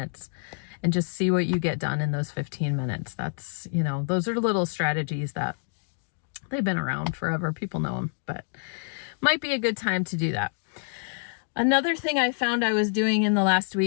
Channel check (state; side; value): silent; right; 60 dB below the other